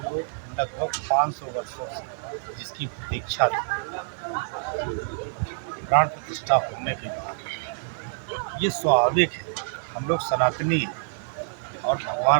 लोग लगभग 500 वर्षों से जिसकी प्रतीक्षा थी, प्राण प्रतिष्ठा होने के बाद ये स्वाभाविक है। हम लोग सनातनी हैं और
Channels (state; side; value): silent; left; digital silence